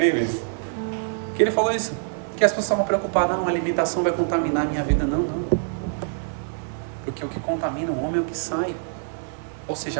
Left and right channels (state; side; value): silent; left; 62 dB below the other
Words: que ele falou isso, que as pessoas estavam preocupadas: não, a alimentação vai contaminar a minha vida. Não. Porque o que contamina o homem é o que sai. Ou